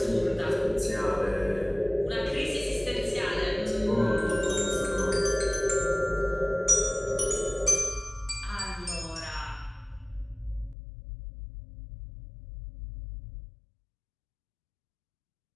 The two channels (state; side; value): drops out; right; at 10.8 s